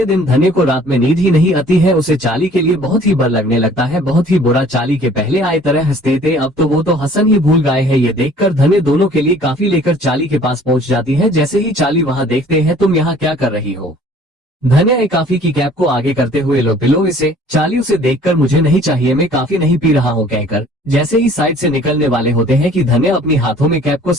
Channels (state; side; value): normal; both; correlation 0.53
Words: दिन धन्य को रात में नींद ही नहीं आती है, उसे चाली के लिए बहुत ही बर लगने लगता है, बहुत ही बुरा। चाली के पहले आए तरह हंसते थे, अब तो वो तो हंसन ही भूल गए हैं। ये देखकर धन्य दोनों के लिए काफी लेकर चाली के पास पहुंच जाती है। जैसे ही चाली वहां देखते हैं, तुम यहाँ क्या कर रही हो? धन्य एक काफी की कैप को आगे करते हुए लो पिलो इसे। चाली उसे देखकर मुझे नहीं चाहिए, मैं काफी नहीं पी रहा हूँ कहकर जैसे ही साइड से निकलने वाले होते हैं कि धन्य अपनी हाथों में कैप को